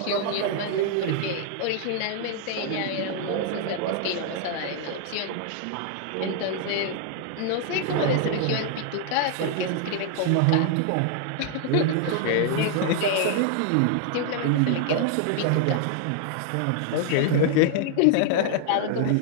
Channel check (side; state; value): both; different; correlation 0.00